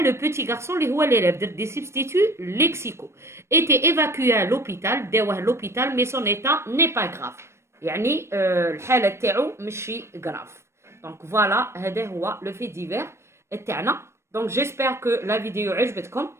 petit garçon اللي هو l'élève. درت des substituts lexicaux. Était évacué à l'hôpital. داوه l'hôpital mais son état n'est pas grave. يعني الحالة تاعو ماشي grave. Donc voilà هذا هو le fait divers تاعنا. Donc j'espère que la vidéo عجبتكم.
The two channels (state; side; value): late; left; 0.13 ms